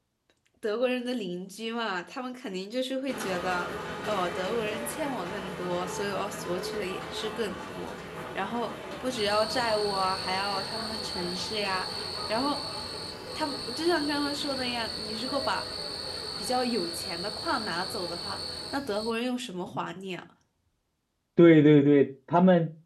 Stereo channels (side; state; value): both; identical; correlation 1.00